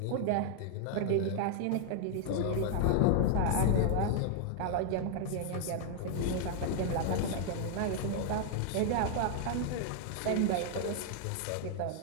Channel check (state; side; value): different; both; correlation 0.00